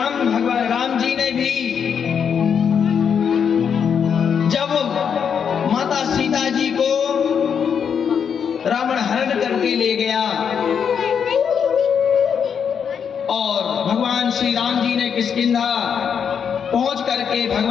जी ने भी जब माता सीता जी को रावण हरण करके ले गया और भगवान श्री राम जी ने किष्किंधा पहुंच करके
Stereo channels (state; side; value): quieter; right; 7.3 dB